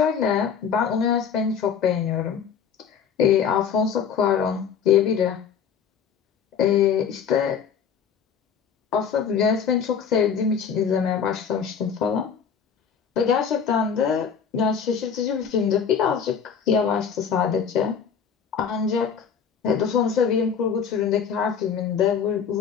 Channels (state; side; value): quieter; right; 7.1 dB